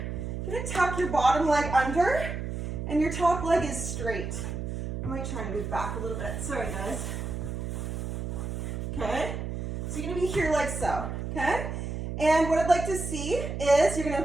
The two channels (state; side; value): noise; right; hum, 4 dB below the sound